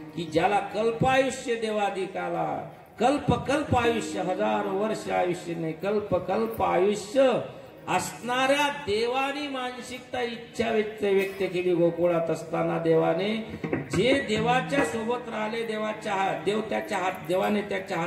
की ज्याला कल्पायुष्य देवाधिकाला, कल्प आयुष्य, 1000 वर्ष आयुष्य नाही, कल्प आयुष्य असणाऱ्या देवानी मानसिकता इच्छा व्यक्त केली. गोकुळात असताना देवाने जे देवाच्या सोबत राहिले, देवाने त्याच्या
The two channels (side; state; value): both; identical; correlation 1.00